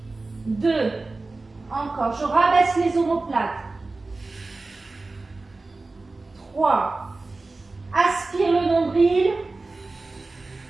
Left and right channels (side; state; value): left; quieter; 3.4 dB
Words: 2. Encore. Je rabaisse les omoplates. 3. Aspire le nombril.